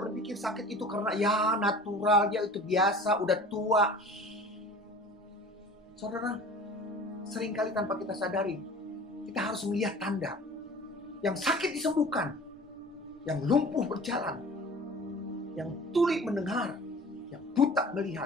sakit itu karena ya natural, ya itu biasa, udah tua. Saudara, seringkali tanpa kita sadari, kita harus melihat tanda. Yang sakit disembuhkan, yang lumpuh berjalan, yang tuli mendengar, yang buta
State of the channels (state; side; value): normal; both; correlation 0.43